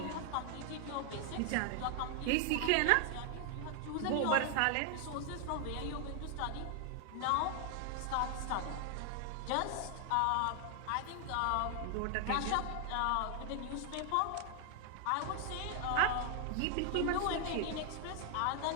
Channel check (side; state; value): both; different; correlation 0.00